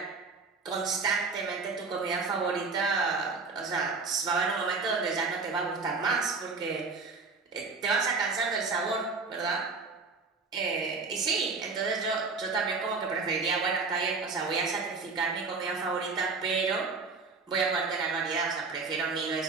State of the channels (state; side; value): quieter; left; 4.3 dB